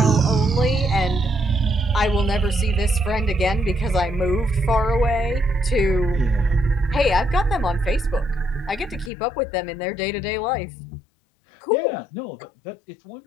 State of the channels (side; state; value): right; drops out; at 9.1 s